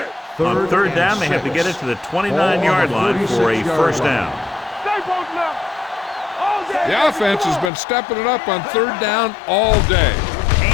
On third down, they have to get it to the 29-yard line for a first down. The offense has been stepping it up on third down all day.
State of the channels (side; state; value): right; drops out; at 7.7 s